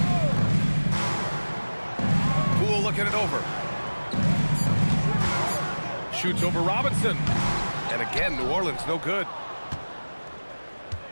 Poole looking it over. Shoots over Robinson. And again, New Orleans no good.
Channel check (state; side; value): inverted; both; correlation -1.00